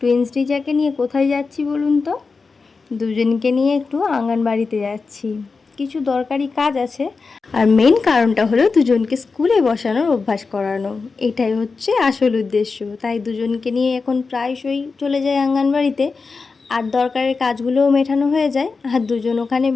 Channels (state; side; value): quieter; right; 4.5 dB